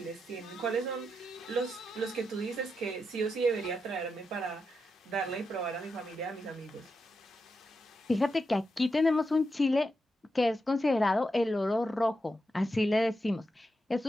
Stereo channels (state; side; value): normal; both; correlation 0.86